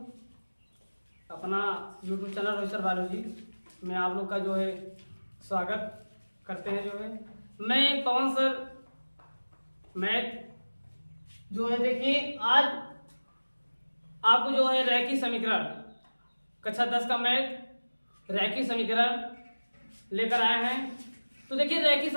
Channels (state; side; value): inverted; both; correlation -1.00